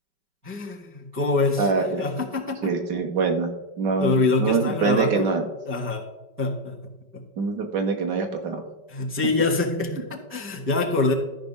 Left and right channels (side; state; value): left; late; 5.2 ms